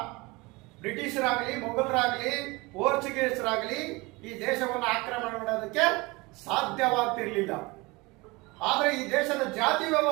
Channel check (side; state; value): left; quieter; 24.1 dB